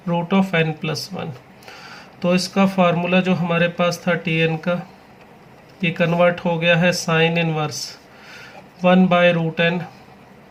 root of n plus 1। तो इसका फार्मूला जो हमारे पास था tn का, ये कन्वर्ट हो गया है sine inverse 1 by root n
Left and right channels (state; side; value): identical; both; correlation 1.00